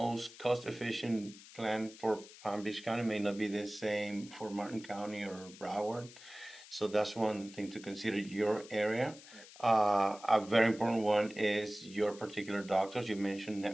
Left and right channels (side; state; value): left; noise; hiss, 19 dB below the sound